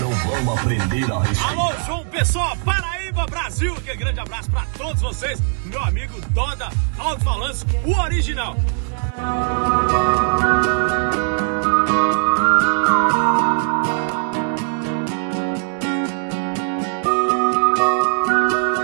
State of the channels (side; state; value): left; silent; 57 dB below the other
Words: vamos aprender a respirar. Alô, João Pessoa, Paraíba, Brasil. Aquele grande abraço pra todos vocês. Meu amigo Doda, alto-falantes, o original.